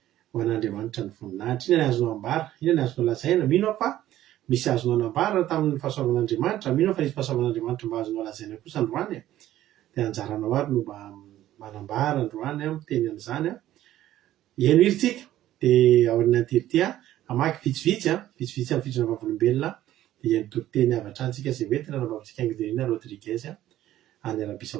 ho an'Andriamanitra ny voninahitra inona ny azonao ambara inona ny azonao lazaina mino fa misy azonao anambara tamin'ny fahasoavan'Andriamanitra mino fa nisy fahasoavan'Andriamanitra mba azonao lazaina kosa androany dia anjaranao ary no mba manambara androany miteny an'izany eno iritsika dia ao aorianan'ity amaky vitsivitsy amin'ny fitsona vavolombelona dia ny toriteny avatra antsika izay hoentina nambavitsika Anguina Rodriguez any Arabie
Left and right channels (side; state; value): left; quieter; 13.5 dB